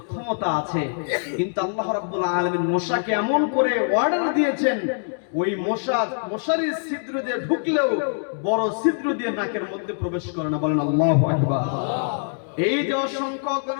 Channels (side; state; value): right; silent; digital silence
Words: ক্ষমতা আছে, কিন্তু আল্লাহ রাব্বুল আলামিন মশাকে এমন করে অর্ডার দিয়েছেন, ওই মশারির ছিদ্র দিয়ে ঢুকলেও বড় ছিদ্র দিয়ে নাকের মধ্যে প্রবেশ করে না। বলেন আল্লাহু আকবার। এই যে অসংখ্য